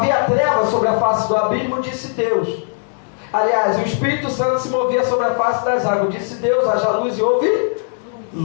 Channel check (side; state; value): right; silent; digital silence